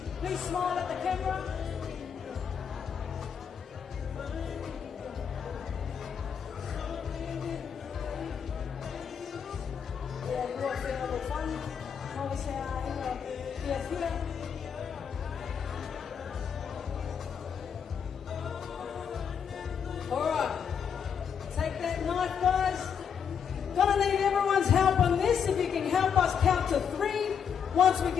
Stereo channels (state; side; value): quieter; right; 7.4 dB